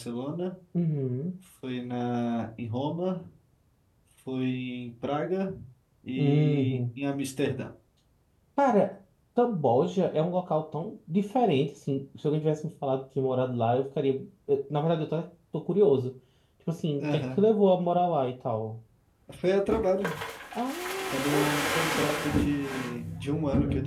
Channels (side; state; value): both; identical; correlation 1.00